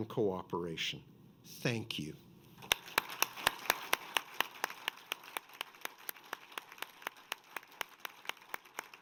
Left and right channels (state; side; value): identical; both; correlation 1.00